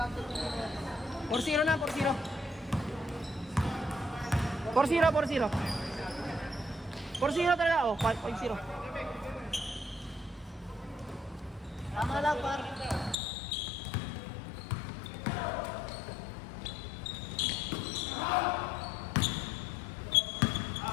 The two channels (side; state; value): right; drops out; at 13.2 s